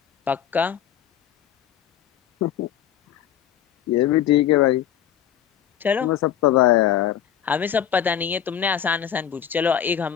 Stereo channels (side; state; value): right; quieter; 9.9 dB